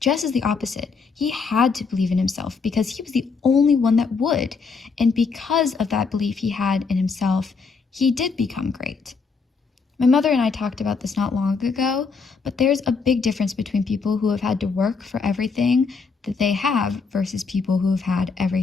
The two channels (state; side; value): quieter; right; 4.9 dB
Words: is the opposite. He had to believe in himself because he was the only one that would. And because of that belief he had in himself, he did become great. My mother and I talked about this not long ago, but there's a big difference between people who have had to work for everything that they have versus people who have had